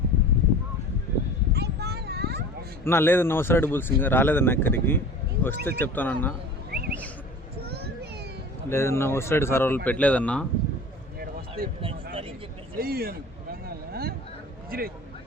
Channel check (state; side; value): normal; both; correlation 0.40